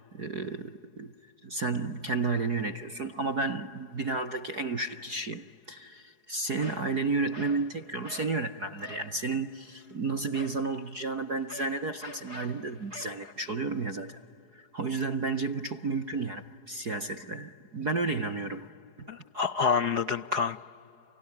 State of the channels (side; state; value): left; late; 4.8 ms